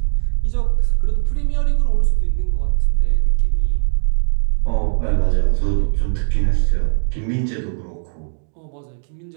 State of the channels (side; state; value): left; silent; digital silence